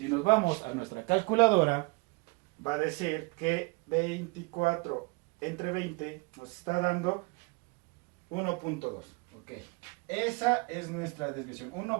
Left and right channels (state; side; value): quieter; left; 29.2 dB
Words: nos vamos a nuestra calculadora, va a decir que 24 entre 20 nos está dando 1.2. Ok, esa es nuestra desviación,